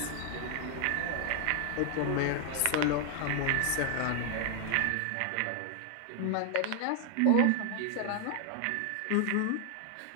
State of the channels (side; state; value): both; different; correlation 0.00